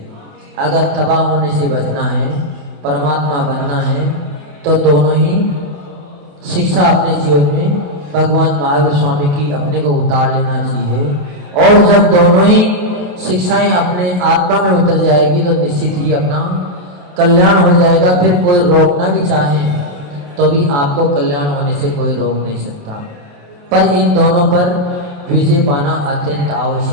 अगर तबाह होने से बचना है, परमात्मा बनना है, तो दोनों ही शिक्षा अपने जीवन में भगवान महावीर स्वामी की अपने को उतार लेना चाहिए। और जब दोनों ही शिक्षाएं अपने आत्मा में उतर जाएगी तो निश्चित ही अपना कल्याण हो जाएगा। फिर कोई रोकना भी चाहे तो भी आपको कल्याण होने से कोई रोक नहीं सकता। पर इन दोनों पर विजय पाना अत्यंत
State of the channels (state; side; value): late; left; 28 ms